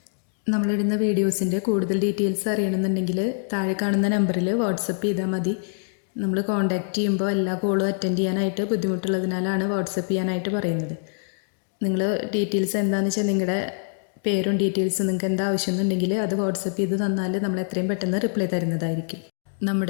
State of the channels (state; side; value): silent; right; 62 dB below the other